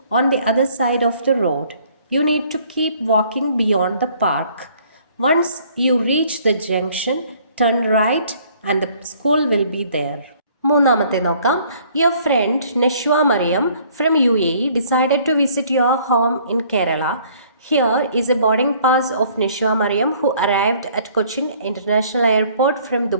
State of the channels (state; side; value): inverted; both; correlation -0.59